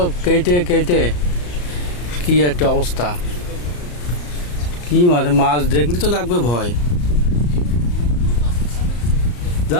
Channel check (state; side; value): late; right; 34 ms